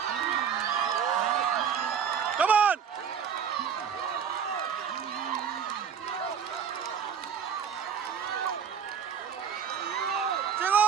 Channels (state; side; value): quieter; left; 7.5 dB